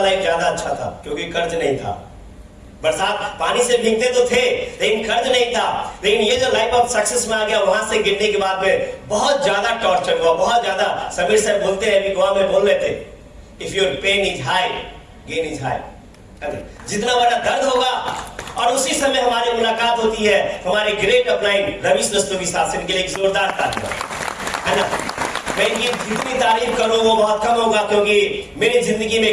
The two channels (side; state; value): both; identical; correlation 1.00